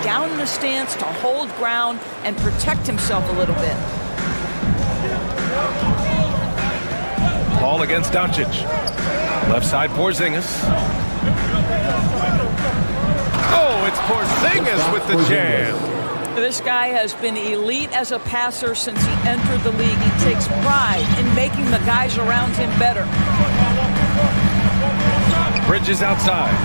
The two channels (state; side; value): inverted; both; correlation -1.00